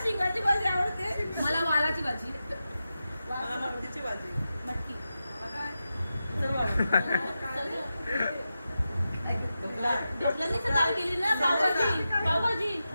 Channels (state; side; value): inverted; both; correlation -0.91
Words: शिंगाची भाजी आवडते. मला वालाची भाजी मला मटकीची भाजी मटकी ढोकळ्याने डाळ केली ना पावभाजी पावभाजी